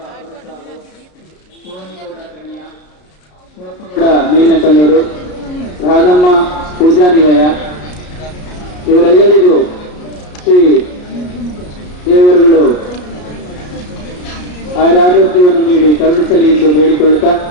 ಹೊರಸಾಗು, ಸೋನಿಗೌಡ ಕಣಿಯ, ಶಿವಪ್ಪಗೌಡ ಮೇಲ್ನಕಲ್ಲೂರು, ರಾಧಮ್ಮ ಪೂಜಾ ನಿಲಯ ಇವರೆಲ್ಲರಿಗೂ ಶ್ರೀ ದೇವರುಗಳು ಆರೋಗ್ಯವನ್ನು ನೀಡಿ ಕರುಣಿಸಲಿ ಎಂದು ಬೇಡಿಕೊಳ್ಳುತ್ತಾ,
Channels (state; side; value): late; right; 33 ms